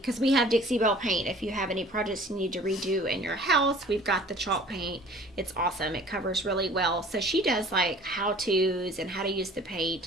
we have Dixie Belle paint. If you have any projects you need to redo in your house, we've got the chalk paint. It's awesome. It covers really well. So she does like how-tos and how to use the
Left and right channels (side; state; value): both; normal; correlation 0.49